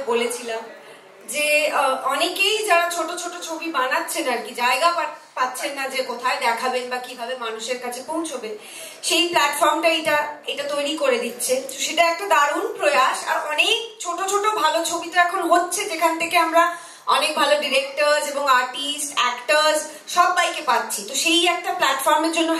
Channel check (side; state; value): both; identical; correlation 1.00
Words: বলেছিলাম যে অনেকেই যারা ছোট ছোট ছবি বানাচ্ছেন আর কি, জায়গা পাচ্ছেন না যে কোথায় দেখাবেন বা কিভাবে মানুষের কাছে পৌঁছবে, সেই প্ল্যাটফর্মটা এটা তৈরি করে দিচ্ছে। সেটা একটা দারুণ প্রয়াস। আর অনেক ছোট ছোট ভালো ছবি তো এখন হচ্ছে, যেখান থেকে আমরা অনেক ভালো ডিরেক্টরস এবং আর্টিস্ট, অ্যাক্টরস সবাইকে পাচ্ছি। তো সেই একটা প্ল্যাটফর্মের জন্য